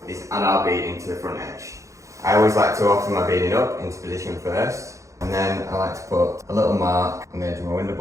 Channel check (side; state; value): left; late; 0.15 ms